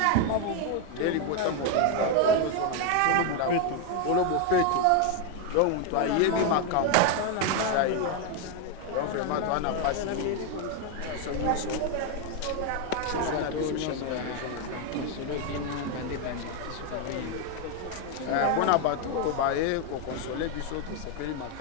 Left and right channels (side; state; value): both; different; correlation 0.01